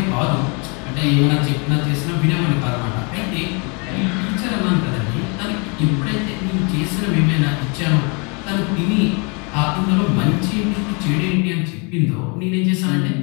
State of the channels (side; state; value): right; quieter; 32.9 dB